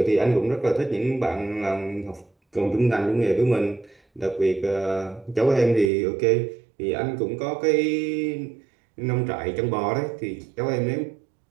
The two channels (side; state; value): left; drops out; at 5.9 s